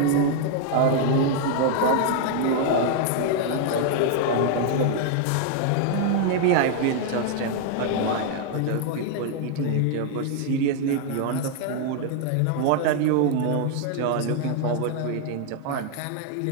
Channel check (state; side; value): different; both; correlation 0.00